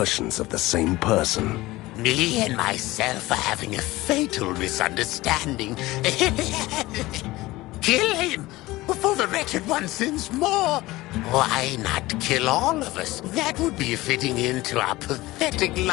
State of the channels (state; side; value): quieter; right; 18.9 dB